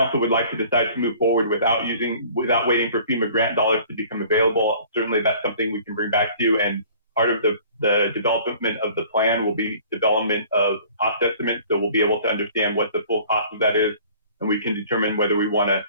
would like to decide to move forward without waiting for FEMA grant dollars to become available, certainly that's something we can bring back to you. And part of the development of the plan will be development of cost estimates. So we'll be able to understand what the full cost of that is, and we can determine whether we want to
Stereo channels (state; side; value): inverted; both; correlation -0.50